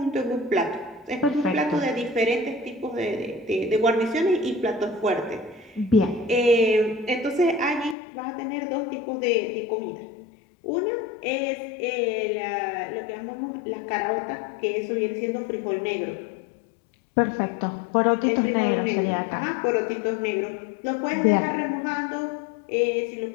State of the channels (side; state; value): right; drops out; at 8.0 s